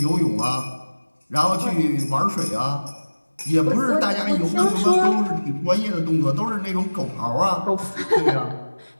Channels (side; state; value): both; inverted; correlation -1.00